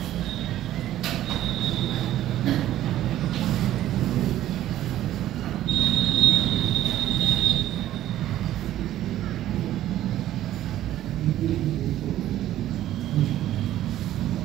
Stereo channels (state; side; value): quieter; left; 13.2 dB